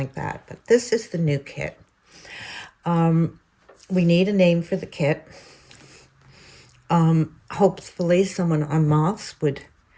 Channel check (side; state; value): both; identical; correlation 1.00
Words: that. But this is the new kit. We need a name for the kit. Hopefully someone on Moths would